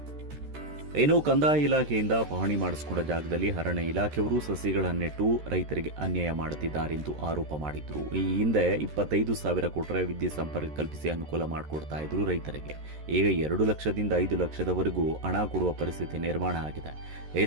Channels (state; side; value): late; left; 13 ms